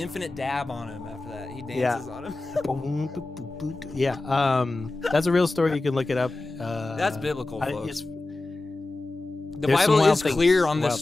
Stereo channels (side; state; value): right; quieter; 3.0 dB